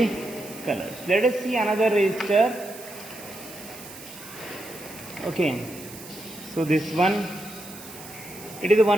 colors. Let us see another resistor. Okay. So this one, it is a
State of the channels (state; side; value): noise; right; hiss, 15 dB below the sound